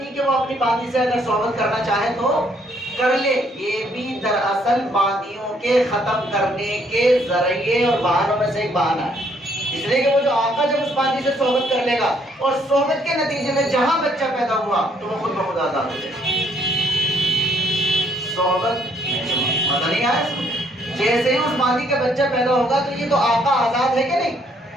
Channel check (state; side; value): normal; both; correlation 0.67